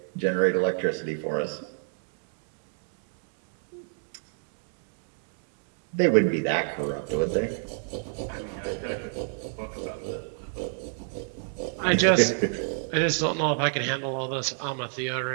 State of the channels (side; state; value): left; silent; digital silence